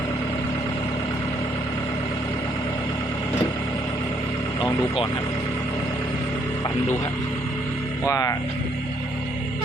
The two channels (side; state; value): both; normal; correlation 0.70